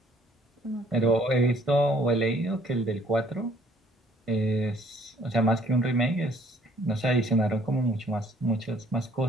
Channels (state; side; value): normal; both; correlation 0.60